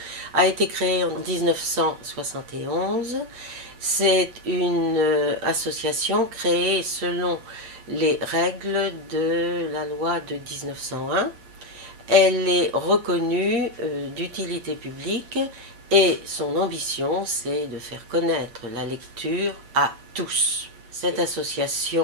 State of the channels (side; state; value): left; late; 8.3 ms